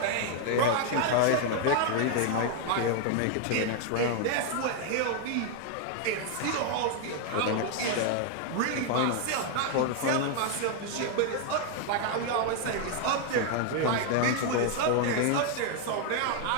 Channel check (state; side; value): different; both; correlation 0.00